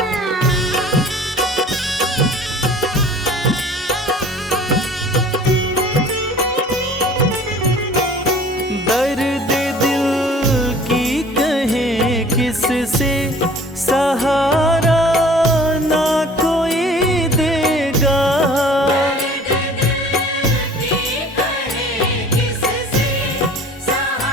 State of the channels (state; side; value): normal; both; correlation 0.48